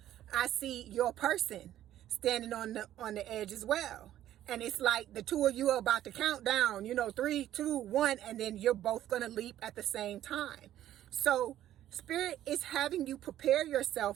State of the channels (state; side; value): quieter; left; 12.4 dB